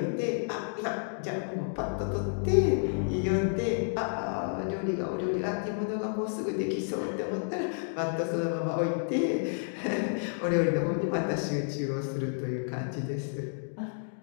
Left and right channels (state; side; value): silent; right; digital silence